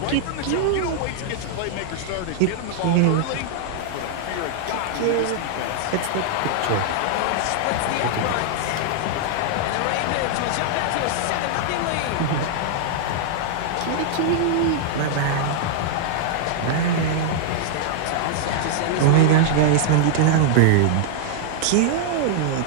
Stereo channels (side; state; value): both; different; correlation -0.01